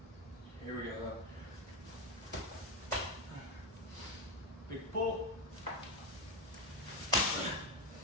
Here we go. Big pull.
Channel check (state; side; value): normal; both; correlation 0.10